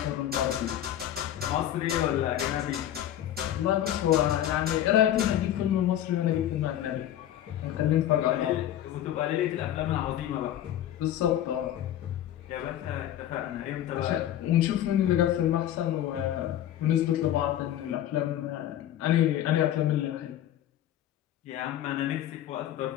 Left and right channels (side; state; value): right; quieter; 11.8 dB